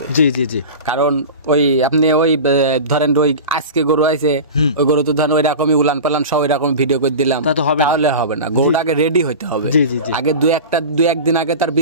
জি জি জি, কারণ ওই আপনি ওই ধরেন ওই আজকে গরু আইছে, ওই গরু তো ধরেন ওই রকমই উলান পালান সব ওই রকম ভিডিও করে দিলাম, তাহলে হবে না। গরুটা আগে রেডি হইতে হবে। আগে 2-1 দিন আগে তার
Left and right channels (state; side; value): inverted; both; correlation -0.30